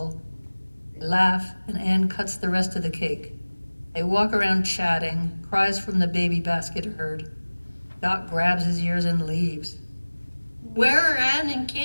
They laugh, and Anne cuts the rest of the cake. They walk around chatting, cries from the baby basket are heard. Doc grabs his ears and leaves. Where are Anne and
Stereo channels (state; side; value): inverted; both; correlation -1.00